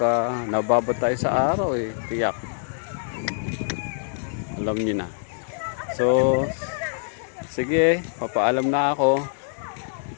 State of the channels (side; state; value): right; silent; 62 dB below the other